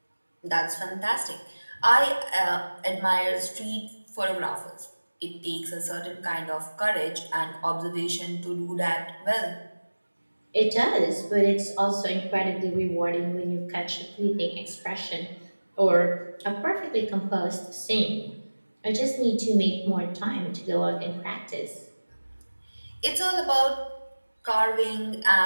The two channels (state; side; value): inverted; both; correlation -1.00